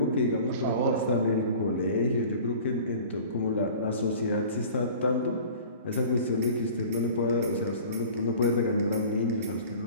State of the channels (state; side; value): inverted; both; correlation -0.44